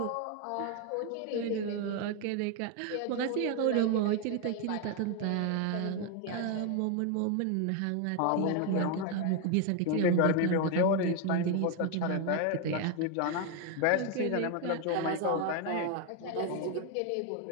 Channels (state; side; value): different; both; correlation 0.01